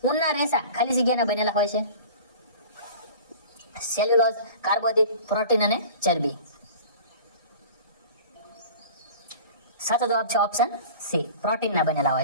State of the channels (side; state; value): both; inverted; correlation -0.40